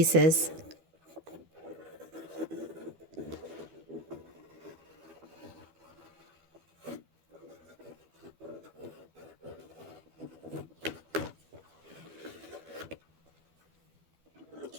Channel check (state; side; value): late; left; 12 ms